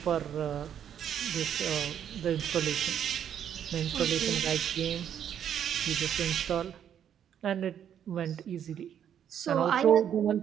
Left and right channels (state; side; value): quieter; left; 9.3 dB